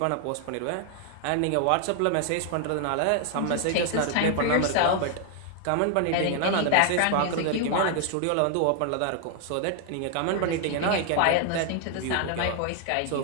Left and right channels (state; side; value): different; both; correlation 0.00